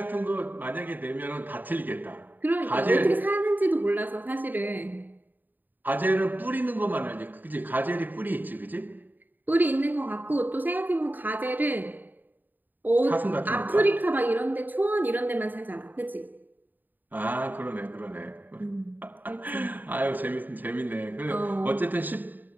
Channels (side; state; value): left; late; 0.088 ms